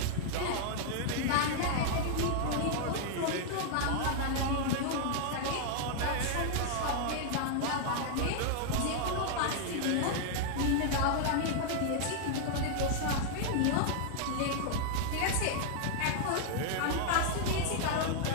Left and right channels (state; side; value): different; both; correlation -0.01